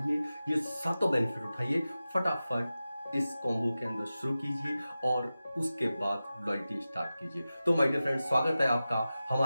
ये 7 बेनिफिट उठाइए, फटाफट इस कॉम्बो के अंदर शुरू कीजिए और उसके बाद लॉयल्टी स्टार्ट कीजिए। तो माय डियर फ्रेंड्स, स्वागत है आपका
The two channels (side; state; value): both; inverted; correlation -0.94